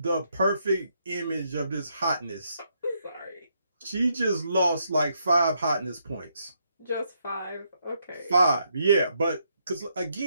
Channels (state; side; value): inverted; both; correlation -0.76